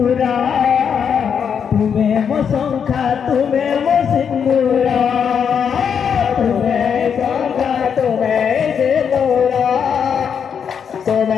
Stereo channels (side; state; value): right; quieter; 7.3 dB